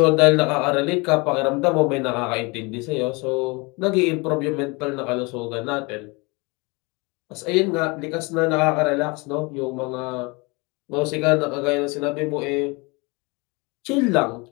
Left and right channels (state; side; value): quieter; right; 27.2 dB